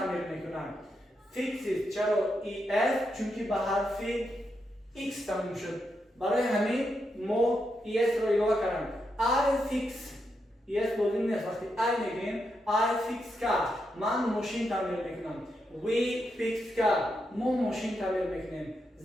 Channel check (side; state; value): both; normal; correlation 0.83